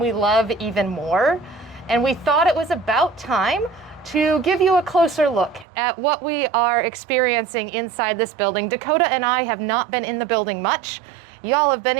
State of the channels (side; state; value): left; drops out; at 5.7 s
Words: love even more. And we thought it was about time to give you a closer look at what we are experiencing inside this building. Dakota and I have not been in the building much. Y'all have been